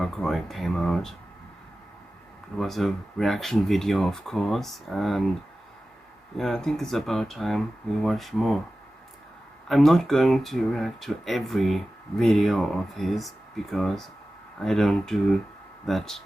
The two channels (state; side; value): normal; both; correlation 0.95